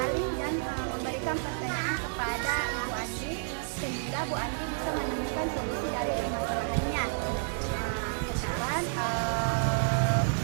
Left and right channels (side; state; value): left; silent; digital silence